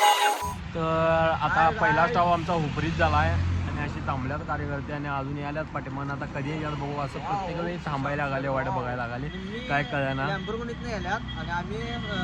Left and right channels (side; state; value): both; identical; correlation 1.00